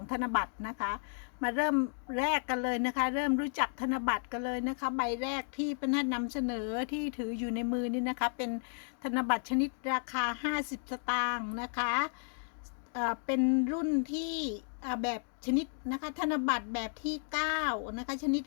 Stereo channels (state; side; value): silent; right; digital silence